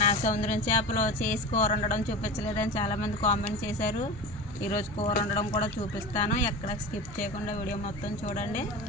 సముద్రం చేపలు చేసి కూర వండడం చూపించలేదని చాలామంది కామెంట్ చేశారు. ఈరోజు కూర వండడం కూడా చూపిస్తాను. ఎక్కడ స్కిప్ చేయకుండా వీడియో మొత్తం చూడండి.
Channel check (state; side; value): normal; both; correlation 0.30